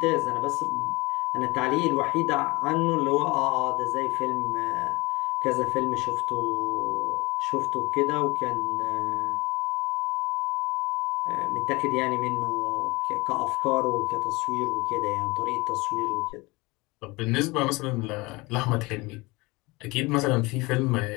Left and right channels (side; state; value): right; quieter; 23.9 dB